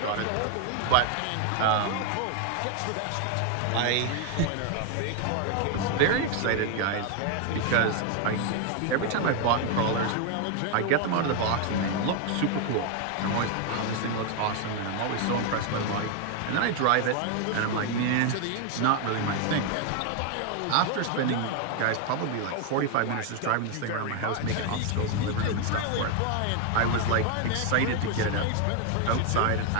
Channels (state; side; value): different; both; correlation 0.01